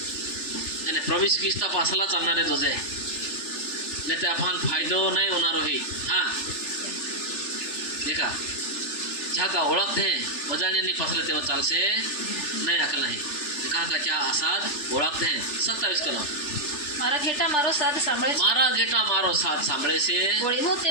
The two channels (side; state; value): right; late; 3.4 ms